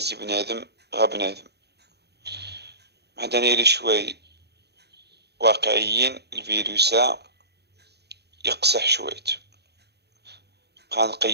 بنادم غا بنادم. هذا نيري شوي واقعيين. الفيروس يقصح شويت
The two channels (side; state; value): left; late; 0.48 ms